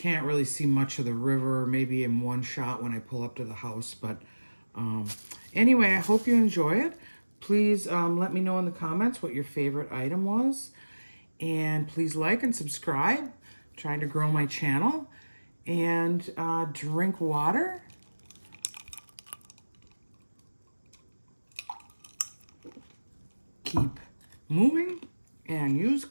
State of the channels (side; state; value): both; inverted; correlation -1.00